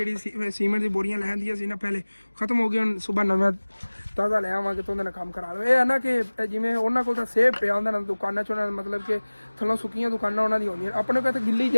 सीमेंट की बोरियां लैन दी सी ना पहले खत्म हो गई, हम सुबह नवा ताज़ा ले आवांगे तो उन्होंने काम करा लो। ये है ना कि जिमें उन्होंने को सेब पे आंदा ना दुकाना च, मतलब कि थलों सुक्कियां दुकाना उन्होंने दी होंगी, अपने को गिल्ली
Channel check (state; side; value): inverted; both; correlation -1.00